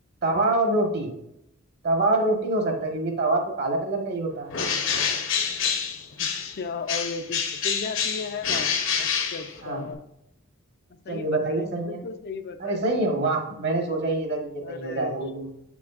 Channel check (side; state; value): both; normal; correlation -0.08